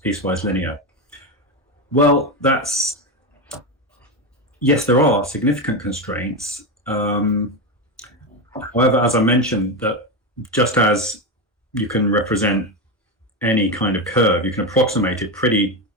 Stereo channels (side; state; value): both; normal; correlation 0.14